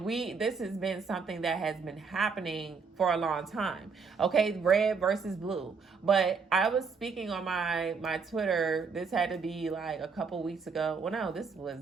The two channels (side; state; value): left; quieter; 5.2 dB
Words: this has been something that has been happening for a long time. Okay, red versus blue. But I was speaking on my Twitter. This had to be like a couple weeks ago. Well, no, this was